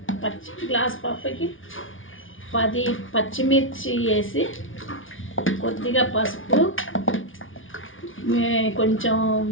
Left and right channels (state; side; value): late; right; 0.57 ms